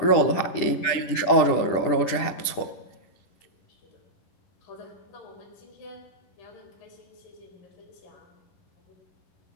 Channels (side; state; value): right; late; 10 ms